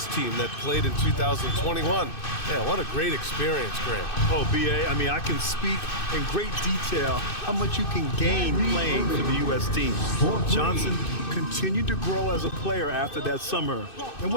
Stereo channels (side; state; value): right; late; 2.6 ms